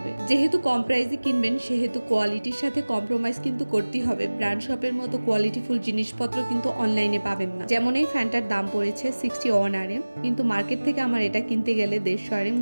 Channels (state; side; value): inverted; both; correlation -1.00